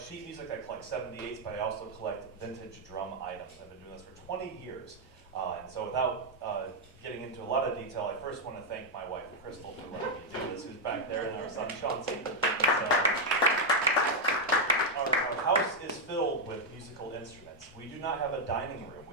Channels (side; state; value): both; normal; correlation 0.01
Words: sheet music, I collect 78s, but I also collect vintage drum items. I've been doing this for 20 years. And so without getting into a lot of detail, I first want to thank my wife, Crystal, for letting me do this, who's back there, and our son, Chauncey. So, our house is filled with musical instruments. We do not have a dining room,